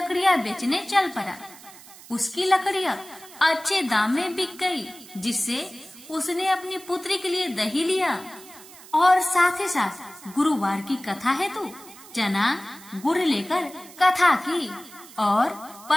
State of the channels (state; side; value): noise; right; hiss, 19 dB below the sound